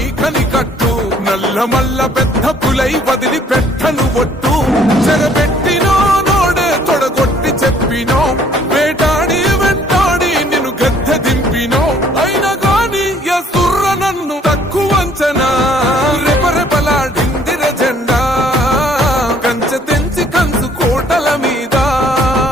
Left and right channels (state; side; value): normal; both; correlation 0.60